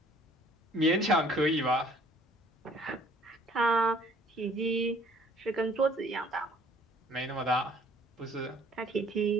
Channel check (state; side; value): normal; both; correlation 0.57